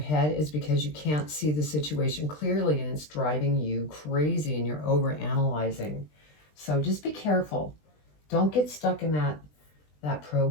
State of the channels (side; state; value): right; late; 20 ms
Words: is because you can't see the situation clearly and it's driving you crazy and you're over analyzing. So just be careful. Don't get stuck in that